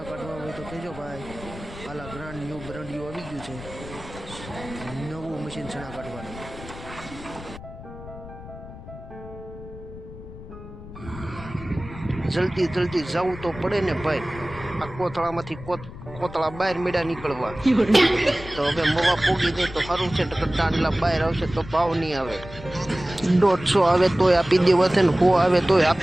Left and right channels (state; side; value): noise; left; rumble, 14 dB below the sound